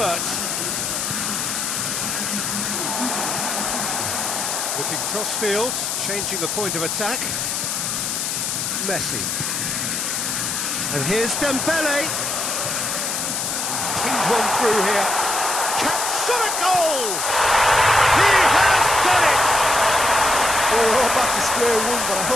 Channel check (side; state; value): left; noise; hiss, 1 dB below the sound